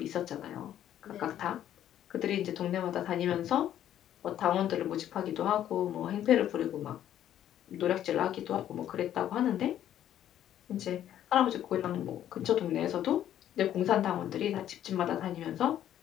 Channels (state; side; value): quieter; right; 11.2 dB